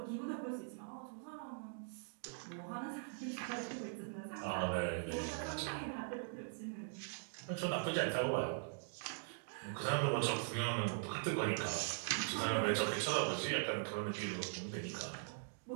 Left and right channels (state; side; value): silent; left; digital silence